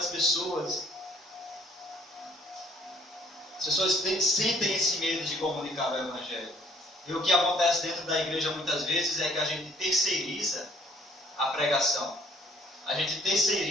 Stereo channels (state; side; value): normal; both; correlation 0.60